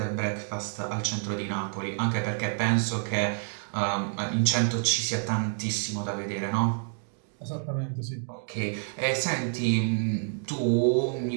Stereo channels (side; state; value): left; silent; 59 dB below the other